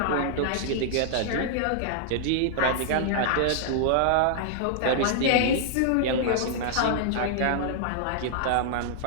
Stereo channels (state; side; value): different; both; correlation -0.01